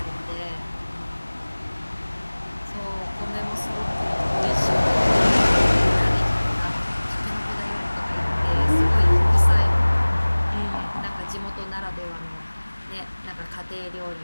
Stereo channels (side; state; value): both; inverted; correlation -1.00